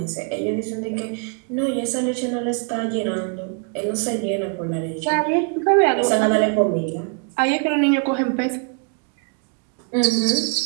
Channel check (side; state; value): left; quieter; 39.5 dB